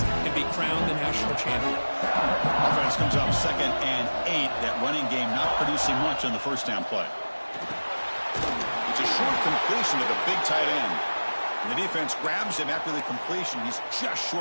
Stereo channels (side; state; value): both; inverted; correlation -1.00